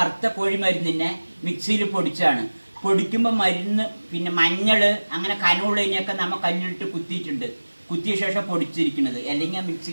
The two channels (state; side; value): inverted; both; correlation -1.00